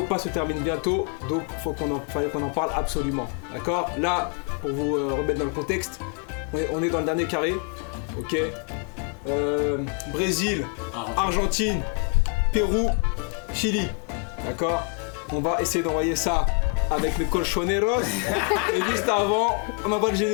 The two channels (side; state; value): right; quieter; 37.9 dB